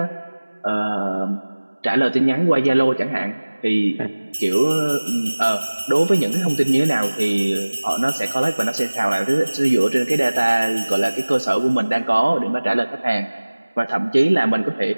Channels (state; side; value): inverted; both; correlation -1.00